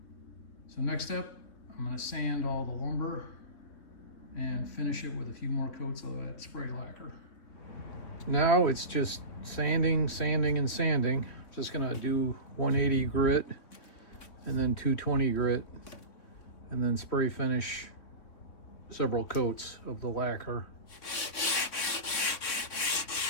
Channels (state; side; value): late; right; 3.4 ms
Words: So next step, I'm going to sand all the lumber and finish it with a few more coats of that spray lacquer. Now it's just sanding, sanding, and sanding. Just going to do 180 grit and then 220 grit and then spray finish several coats of the lacquer.